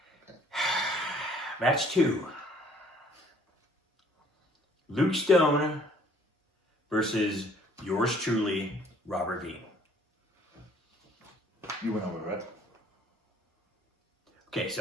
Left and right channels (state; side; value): normal; both; correlation 0.58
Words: Match 2. Luke Stone versus yours truly, Robert Bean. You went over, right? Okay,